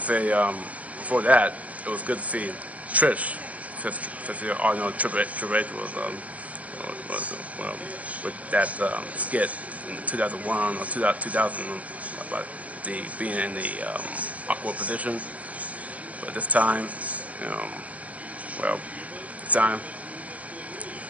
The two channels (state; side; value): late; left; 0.069 ms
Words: say before that it was good to see Trish, since you all know Triple H was with that skit in 2001 or 2000 about being in the awkward position. But this time,